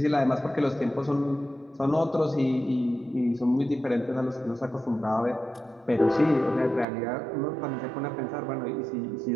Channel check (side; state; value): left; drops out; at 6.9 s